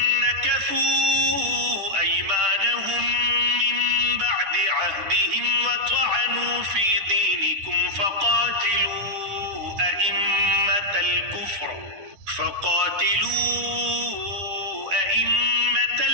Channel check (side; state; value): left; late; 10 ms